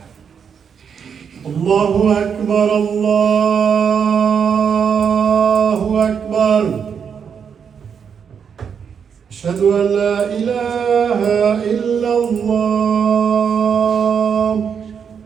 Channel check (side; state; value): left; quieter; 7.0 dB